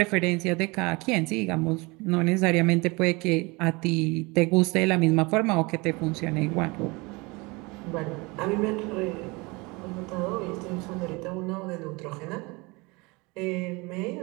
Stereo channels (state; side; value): quieter; left; 25.8 dB